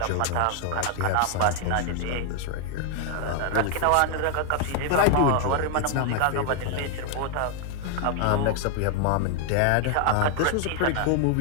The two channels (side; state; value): both; different; correlation 0.00